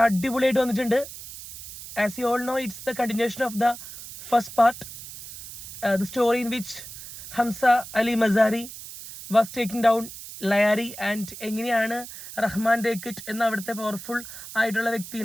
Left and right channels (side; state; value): right; noise; hiss, 13 dB below the sound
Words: അടിപൊളിയായിട്ട് വന്നിട്ടുണ്ട്. As you all know, it's the continuation of the first part, the story in which Hamza Ali Mazari was taking down Lyari and എങ്ങനെയാണ് റഹ്മാൻ ഡേക്കിറ്റ് എന്ന അവിടുത്തെ പവർഫുൾ ആയിട്ടുള്ള